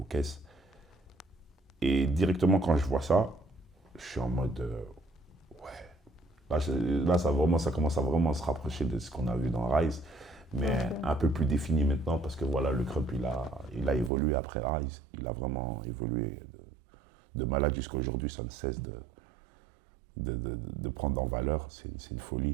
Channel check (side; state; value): left; drops out; at 14.1 s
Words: caisse. Et directement quand je vois ça, je suis en mode ouais. Là, ça commence à vraiment se rapprocher de ce qu'on a vu dans Rise, mais un peu plus défini maintenant parce que voilà, le Crump il a évolué après Rise. Il a vraiment évolué de malade jusqu'à aujourd'hui. Ça ne cesse de prendre en valeur. C'est une